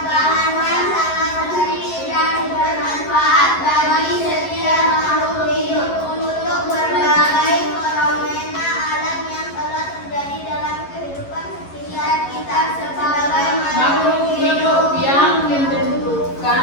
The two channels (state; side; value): late; right; 11 ms